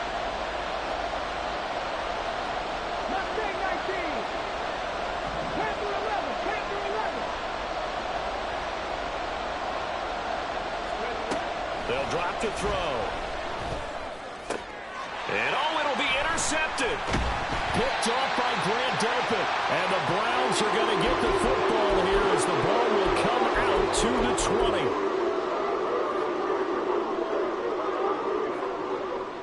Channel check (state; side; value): identical; both; correlation 1.00